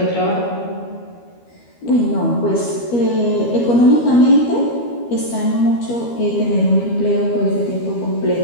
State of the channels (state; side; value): late; right; 13 ms